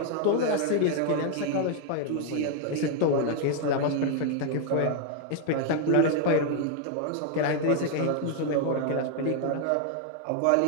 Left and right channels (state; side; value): different; both; correlation 0.00